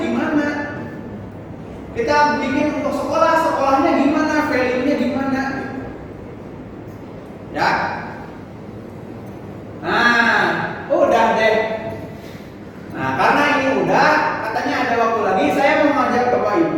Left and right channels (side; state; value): both; identical; correlation 1.00